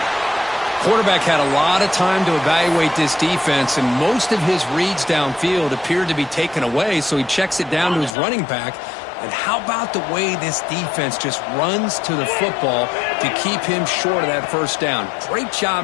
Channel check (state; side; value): drops out; right; at 8.2 s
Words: Quarterback had a lot of time to evaluate this defense, and most of his reads downfield appeared to be taken away, so he checks it down to his running back. And how about the way this defense just runs to the football to keep him short of that first down? Great